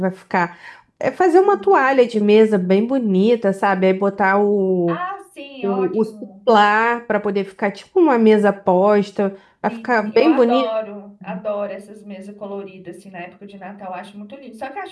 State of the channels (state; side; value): identical; both; correlation 1.00